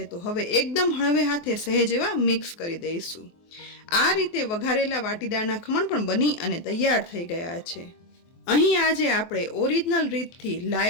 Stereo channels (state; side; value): late; right; 24 ms